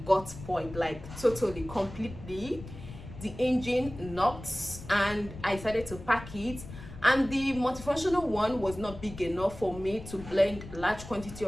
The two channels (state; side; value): noise; left; rumble, 13 dB below the sound